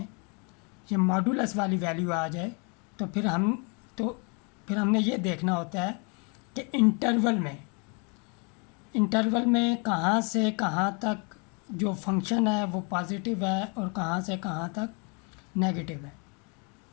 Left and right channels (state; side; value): quieter; right; 34.3 dB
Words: ये मॉडुलस वाली वैल्यू आ जाए तो फिर हमने ये देखना होता है कि इंटरवल में कहाँ से कहाँ तक जो फंक्शन है वो पॉजिटिव है और कहाँ से कहाँ तक नेगेटिव है।